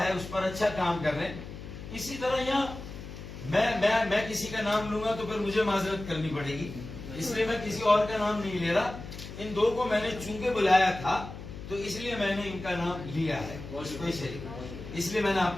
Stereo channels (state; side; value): noise; left; hum, 11 dB below the sound